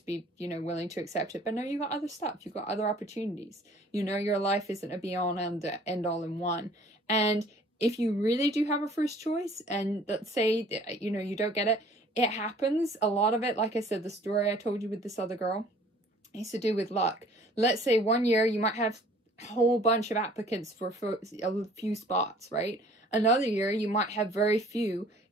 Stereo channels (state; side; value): normal; both; correlation 0.53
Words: be, you know, willing to accept it. But no, you got other stuff, you got other opportunities. You know, your life isn't a be-all and end-all in one. And if you really do have a first choice, and let's say, you know, you don't get it, it happens. A lot of it, like I said, the story I told you with this other girl, it's to do with luck. Let's say one year you might have a whole bunch of applicants for a few spots, right? Another year you might have very few